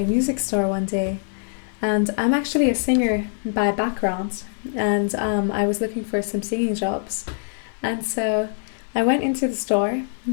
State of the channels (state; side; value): silent; right; 61 dB below the other